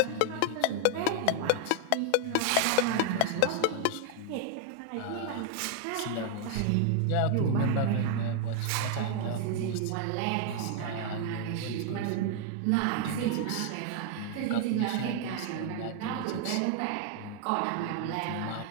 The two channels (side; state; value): both; different; correlation 0.00